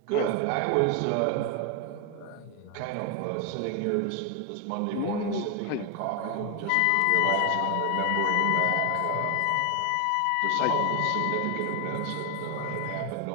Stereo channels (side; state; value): both; different; correlation 0.01